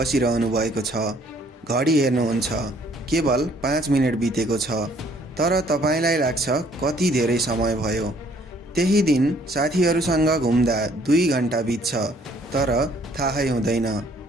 भएको छ। घडी हेर्नुहुन्छ, केवल 5 मिनेट बितेको छ, तर तपाईँलाई लाग्छ कति धेरै समय भयो। त्यही दिन साथीहरूसँग घुम्दा 2 घण्टा बित्छ, तर थाहै हुँदैन।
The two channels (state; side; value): normal; both; correlation 0.61